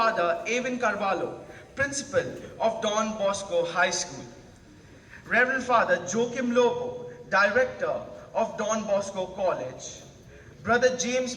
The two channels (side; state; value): both; identical; correlation 1.00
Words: Avin Carvalho, principal of Don Bosco High School. Reverend Father Joachim Lobo, director of Don Bosco College. Brother